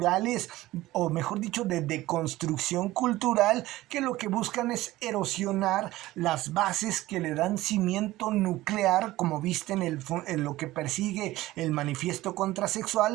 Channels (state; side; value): quieter; left; 17.2 dB